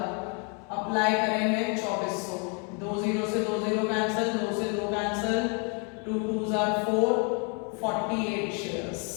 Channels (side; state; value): right; quieter; 36.5 dB